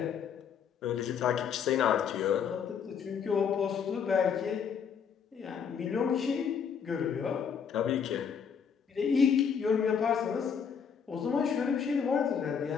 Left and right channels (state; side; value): quieter; right; 7.0 dB